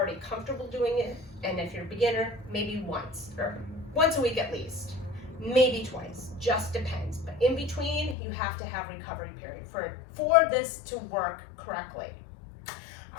comfortable doing it, and if you're a beginner, maybe once a week at least, maybe twice, just depends. But in between, you have to have recovery period for this to work correctly.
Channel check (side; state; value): right; drops out; at 8.2 s